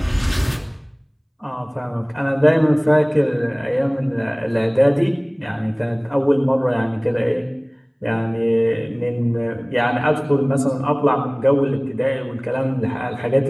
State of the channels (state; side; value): identical; both; correlation 1.00